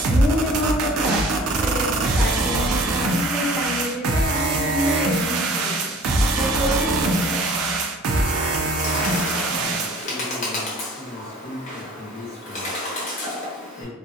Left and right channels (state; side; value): normal; both; correlation 0.48